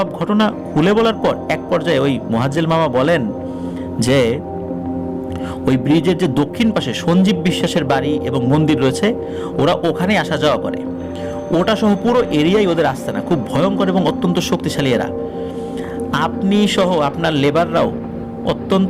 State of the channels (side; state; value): both; identical; correlation 1.00